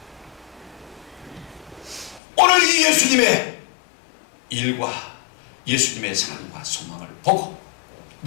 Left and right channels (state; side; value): drops out; right; at 2.2 s